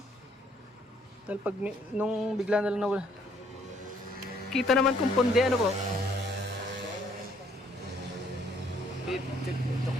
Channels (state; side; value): normal; both; correlation 0.65